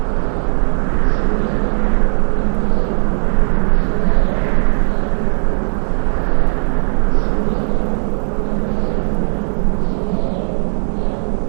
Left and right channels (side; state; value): left; silent; 69 dB below the other